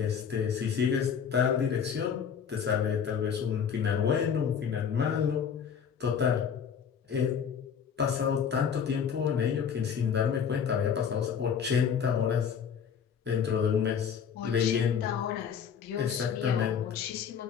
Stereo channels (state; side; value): quieter; right; 7.4 dB